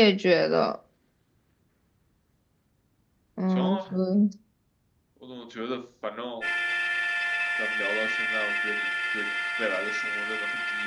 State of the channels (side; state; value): both; identical; correlation 1.00